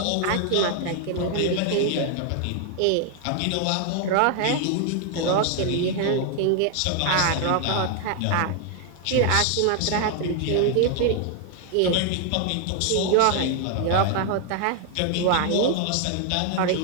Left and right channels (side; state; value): both; different; correlation 0.00